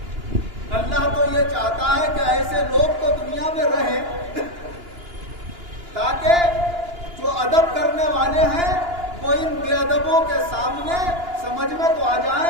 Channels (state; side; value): late; left; 2.9 ms